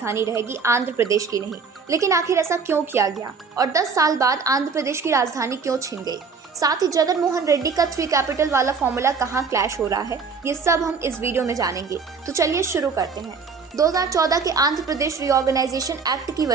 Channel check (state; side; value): quieter; left; 5.2 dB